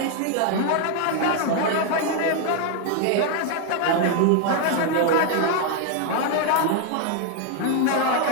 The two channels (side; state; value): both; different; correlation 0.00